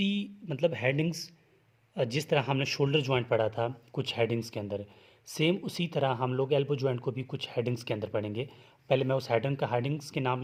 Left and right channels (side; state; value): both; identical; correlation 1.00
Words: मतलब हेडिंग्स, जिस तरह हमने शोल्डर जॉइंट पढ़ा था कुछ हेडिंग्स के अंदर, सेम उसी तरह हम लोग एल्बो जॉइंट को भी कुछ हेडिंग्स के अंदर पढ़ेंगे। पहले मैं उस हेडिंग्स के नाम